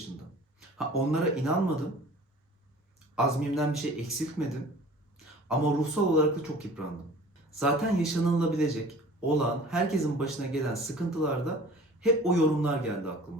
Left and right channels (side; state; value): both; normal; correlation 0.46